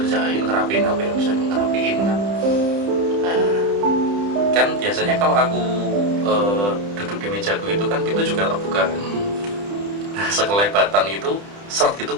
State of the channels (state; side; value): late; left; 30 ms